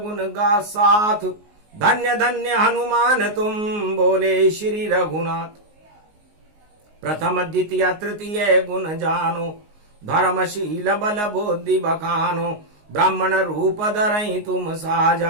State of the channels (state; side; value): late; left; 19 ms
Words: गा साथ। धन्य धन्य हनुमान तुम, बोले श्री रघुनाथ। प्रथम द्वितीय तृतीय गुण जानो, धर्मशील बल बुद्धि बखानो। ब्राह्मण रूप धरई तुम